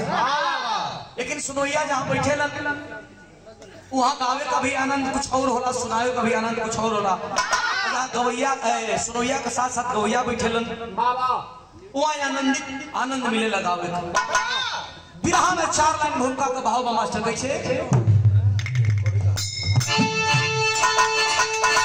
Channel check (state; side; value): identical; both; correlation 1.00